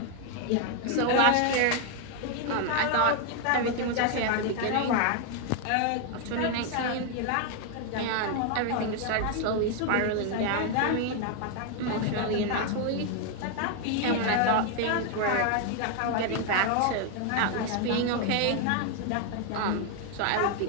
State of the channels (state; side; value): different; both; correlation 0.01